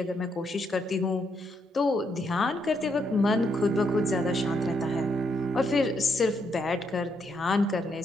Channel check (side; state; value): both; normal; correlation 0.77